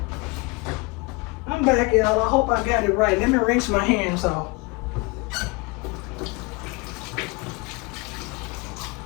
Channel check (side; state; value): right; quieter; 27.2 dB